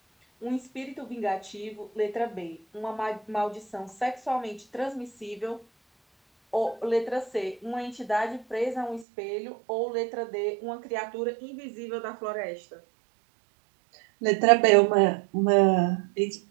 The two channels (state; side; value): drops out; left; at 9.1 s